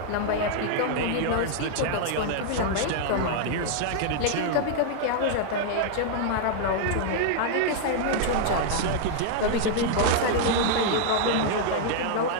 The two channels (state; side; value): different; both; correlation -0.01